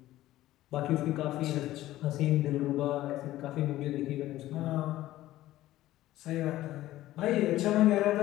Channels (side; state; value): right; quieter; 15.2 dB